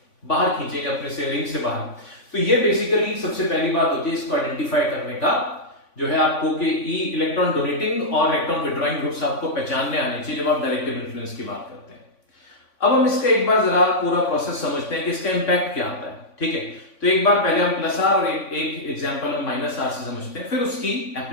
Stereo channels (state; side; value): late; right; 3.5 ms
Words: बाहर खींचेंगे अपने से रिंग से बाहर। तो ये बेसिकली सबसे पहली बात होती है इसको आइडेंटिफाई करने का, जो है आपको कि इलेक्ट्रॉन डोनेटिंग और इलेक्ट्रॉन विड्रॉइंग ग्रुप्स आपको पहचानने आने चाहिए जब आप डायरेक्टिव इन्फ्लुएंस की बात करते हैं। अब हम इसका एक बार जरा पूरा प्रोसेस समझते हैं कि इसका इंपैक्ट क्या आता है। ठीक है, तो एक बार पहले हम प्लस आर और एक एग्जांपल हम माइनस आर से समझते हैं, फिर उसकी